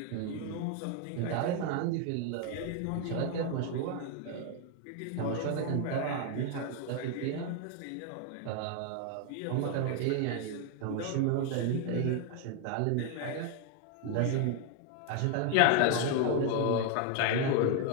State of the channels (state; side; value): different; both; correlation 0.01